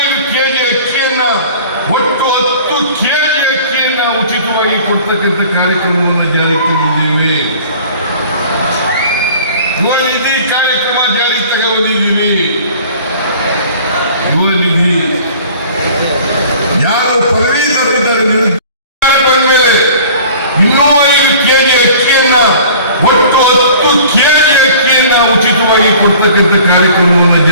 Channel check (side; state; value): both; inverted; correlation -0.47